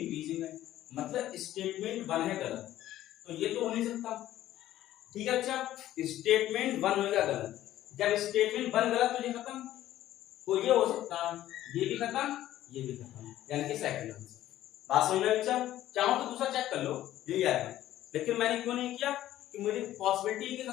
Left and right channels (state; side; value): quieter; right; 13.6 dB